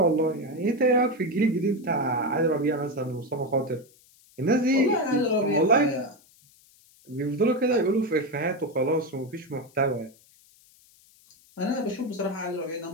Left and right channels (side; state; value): left; noise; hiss, 29 dB below the sound